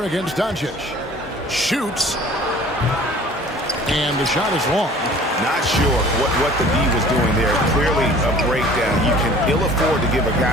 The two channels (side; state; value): both; normal; correlation 0.48